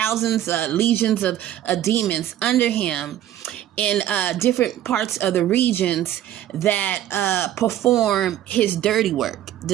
legions of demons under him in different parts of the regions that perform his dirty work.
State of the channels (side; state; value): left; quieter; 12.1 dB